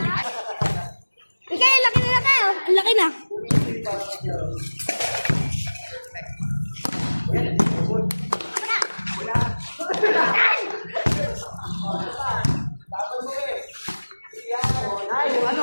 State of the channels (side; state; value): both; inverted; correlation -1.00